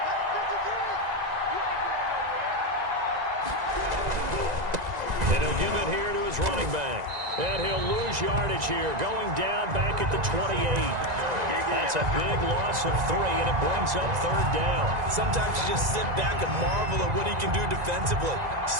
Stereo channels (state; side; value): late; left; 1.9 ms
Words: And he'll give it here to his running back. And he'll lose yardage here, going down back at the 28. That's a big loss of 3, and it brings up 3rd down. Sometimes you just sit back and marvel at what he can do defensively.